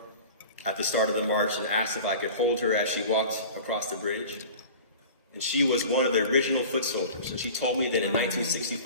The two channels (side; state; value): both; inverted; correlation -0.39